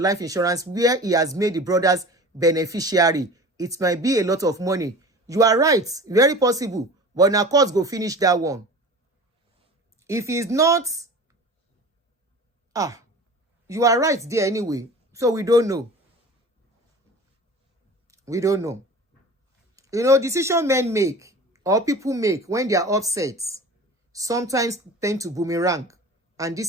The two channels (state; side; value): normal; both; correlation 0.38